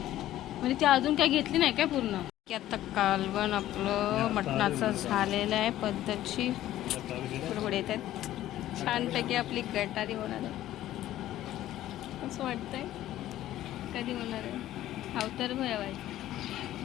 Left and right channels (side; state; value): right; quieter; 13.7 dB